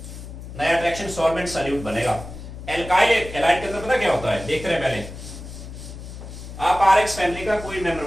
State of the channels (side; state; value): left; noise; hum, 12 dB below the sound